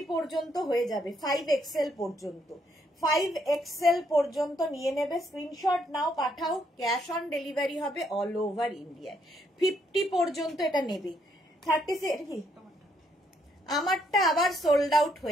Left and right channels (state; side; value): normal; both; correlation 0.72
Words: পর্যন্ত হয়ে যাবে, 5XL পর্যন্ত, 5XL পর্যন্ত নিয়ে নেবে। স্ক্রিনশট নাও, পাঠাও, ক্যাশ অন ডেলিভারি হবে অল ওভার ইন্ডিয়ায়। 50 পর্যন্ত এটা নেবে। 36 কি আমারটা আবার সোল্ড আউট